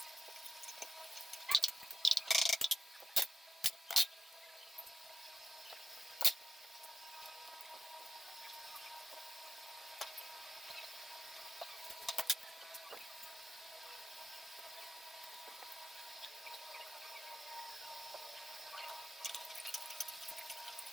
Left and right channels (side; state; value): both; normal; correlation 0.91